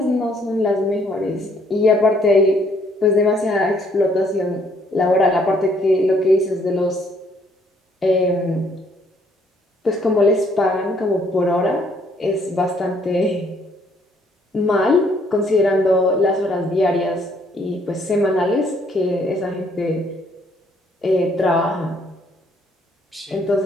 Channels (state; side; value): normal; both; correlation 0.66